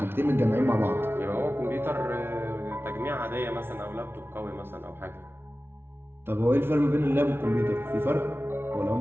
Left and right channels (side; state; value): left; late; 0.11 ms